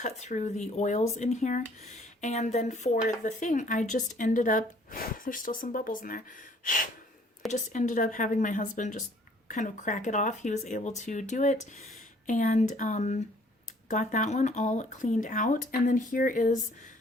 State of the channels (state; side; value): normal; both; correlation 0.59